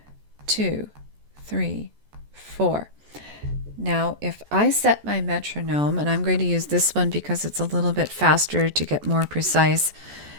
2, 3, 4. Now, if I set my metronome, and I'm going to use this one because it's a little bit faster to get more precise,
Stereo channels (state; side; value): late; left; 14 ms